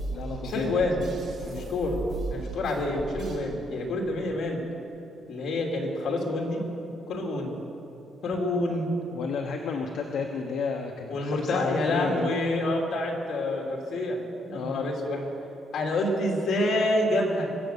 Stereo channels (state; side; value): normal; both; correlation 0.72